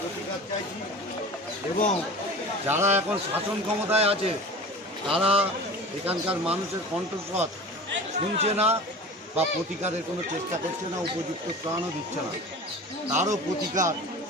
চাইছি এবং যারা এখন শাসন ক্ষমতায় আছে তারা এখানকার মানুষের কণ্ঠস্বর শুনছে না বা প্রতিকারের কোনো চেষ্টা করছে না, উপযুক্ত ত্রাণও দিচ্ছে না। তারও প্রতিকার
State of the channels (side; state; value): both; normal; correlation 0.37